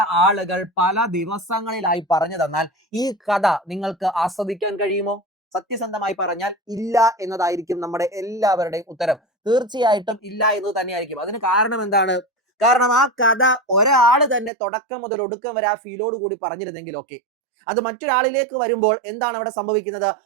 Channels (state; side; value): drops out; left; at 14.5 s